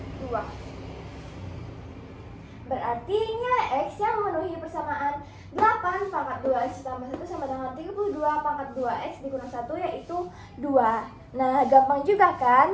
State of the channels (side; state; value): both; identical; correlation 1.00